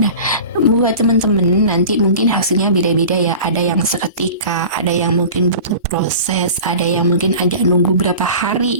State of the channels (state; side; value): inverted; both; correlation -0.37